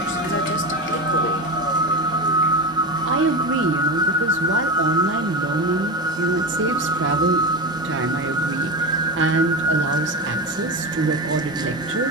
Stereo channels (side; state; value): both; normal; correlation 0.21